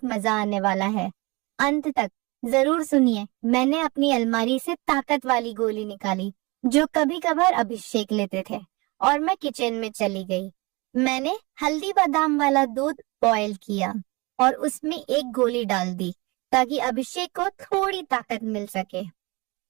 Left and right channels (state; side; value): quieter; left; 25.8 dB